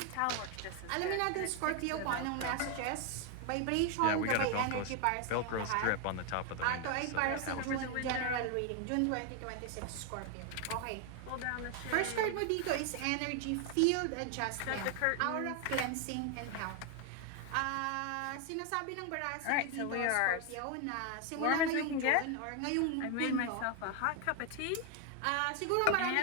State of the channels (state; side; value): different; both; correlation 0.01